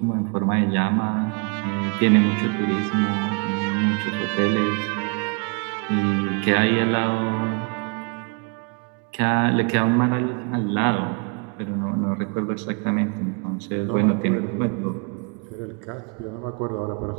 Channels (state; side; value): quieter; left; 34.7 dB